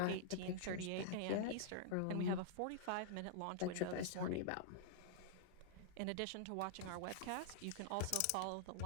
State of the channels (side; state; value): both; different; correlation -0.02